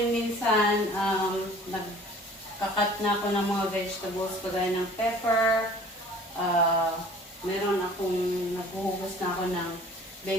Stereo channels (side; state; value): both; normal; correlation 0.49